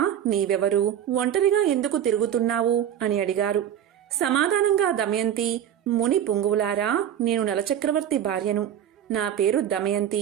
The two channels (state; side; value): quieter; left; 10.2 dB